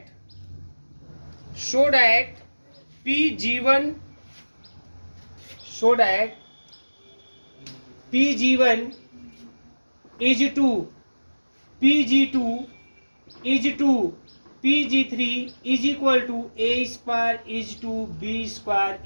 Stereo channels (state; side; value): inverted; both; correlation -1.00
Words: PG1, so that PG1 is to PG2 is to PG3 is equal to A square is to B square